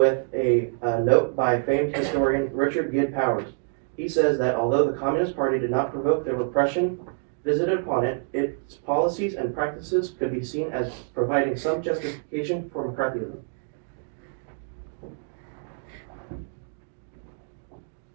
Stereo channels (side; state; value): left; silent; digital silence